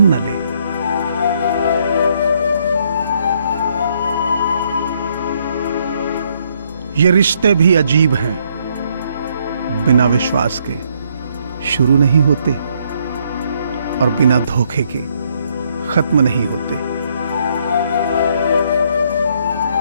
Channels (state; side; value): inverted; both; correlation -0.71